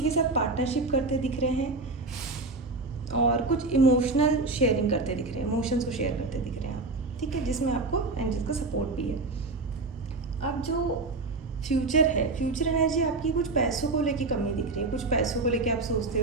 के साथ पार्टनरशिप करते दिख रहे हैं, और कुछ इमोशनल शेयरिंग करते दिख रहे हैं, इमोशंस को शेयर करते दिख रहे हैं आप। ठीक है, जिसमें आपको एंजल्स का सपोर्ट भी है। अब जो फ्यूचर है, फ्यूचर एनर्जी आपकी कुछ पैसों को लेके कमी दिख रही है, कुछ पैसों को लेके आप सोचते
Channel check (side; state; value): left; quieter; 3.4 dB